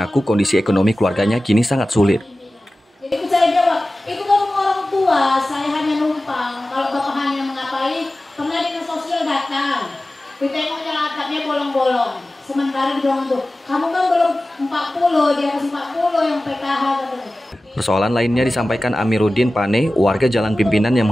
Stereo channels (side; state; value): both; normal; correlation 0.96